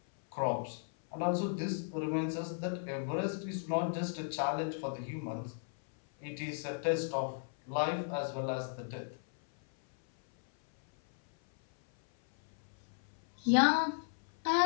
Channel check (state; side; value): silent; right; 54 dB below the other